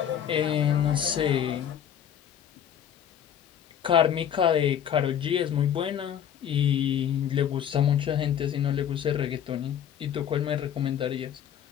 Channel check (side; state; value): right; quieter; 9.4 dB